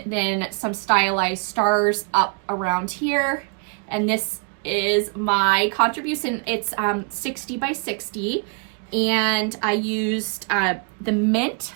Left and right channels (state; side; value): quieter; left; 39.8 dB